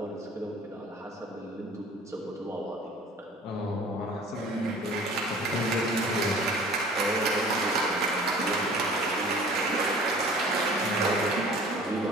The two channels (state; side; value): normal; both; correlation 0.47